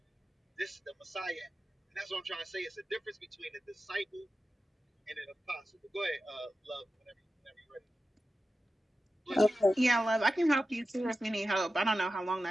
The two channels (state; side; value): normal; both; correlation 0.93